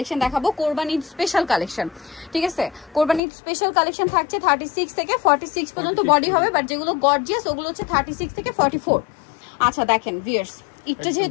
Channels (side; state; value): right; drops out; at 3.2 s